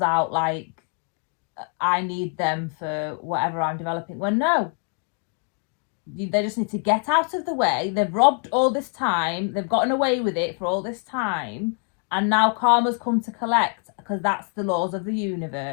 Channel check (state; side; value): quieter; right; 39.5 dB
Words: out like I need them for whatever I'm developing. Well, no, they just need to get out of the way. They've robbed all this time. They've gotten away with it for all this time. And now karma's come to collect, because that's the laws of the